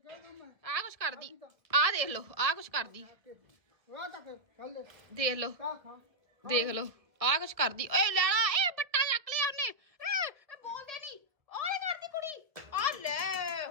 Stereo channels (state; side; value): late; left; 1.6 ms